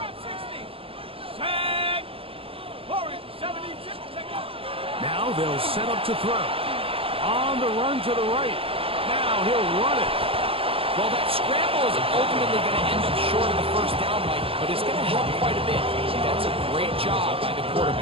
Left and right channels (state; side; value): late; left; 0.27 ms